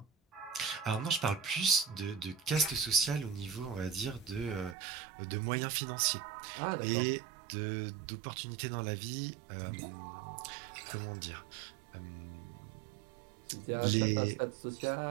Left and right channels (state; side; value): drops out; left; at 4.8 s